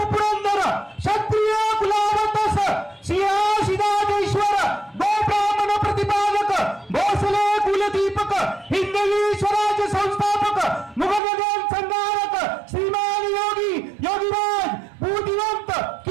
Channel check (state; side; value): drops out; left; at 11.2 s